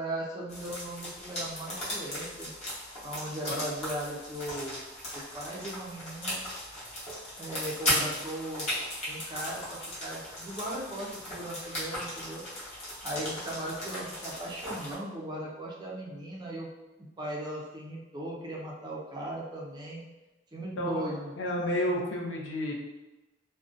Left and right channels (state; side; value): normal; both; correlation 0.22